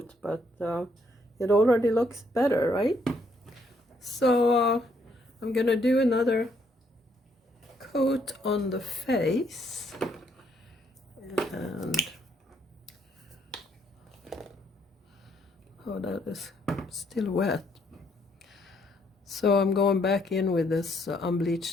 but it already looks better, right? So I'm gonna do another coat on the face, and oh, that is still wet. So I'm going back in with this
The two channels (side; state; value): both; normal; correlation 0.70